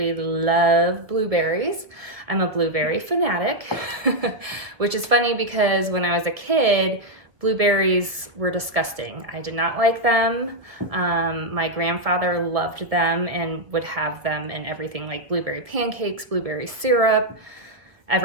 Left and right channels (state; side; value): late; left; 1.3 ms